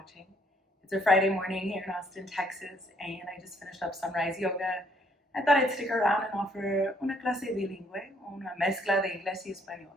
It's a Friday morning here in Austin, Texas, and I just finished up sunrise yoga. I thought I'd stick around and offer una clase bilingüe, una mezcla de inglés y español.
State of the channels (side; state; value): both; normal; correlation 0.67